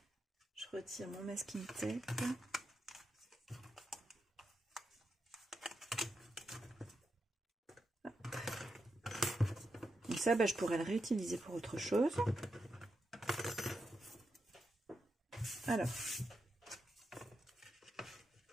Je retire mon masking tape. Donc ça, je pourrais le réutiliser pour autre chose. Alors,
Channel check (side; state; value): both; normal; correlation 0.85